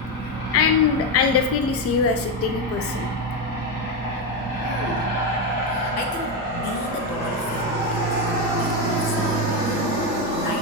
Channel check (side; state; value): both; normal; correlation 0.09